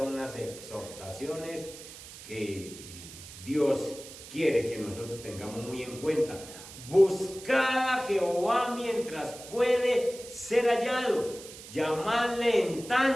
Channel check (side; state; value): right; noise; hiss, 15 dB below the sound